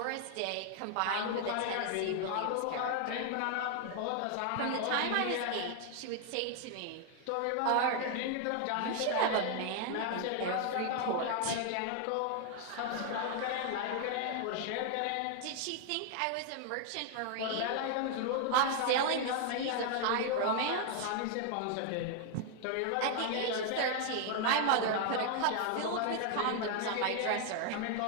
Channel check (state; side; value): different; both; correlation 0.00